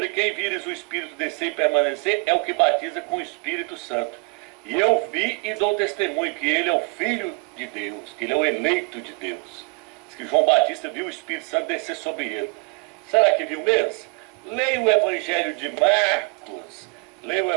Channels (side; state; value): left; quieter; 30.1 dB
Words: quem vires o Espírito descer e permanecer é o que batiza com o Espírito Santo. E eu vi e dou testemunho que ele é o Filho de Deus, que ele é o eleito de Deus. Diz que João Batista viu o Espírito Santo descer sobre ele. Será que viu mesmo? Leia o Evangelho de Marcos. Leia o